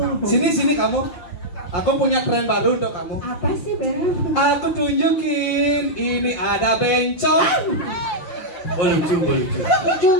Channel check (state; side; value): late; right; 5.6 ms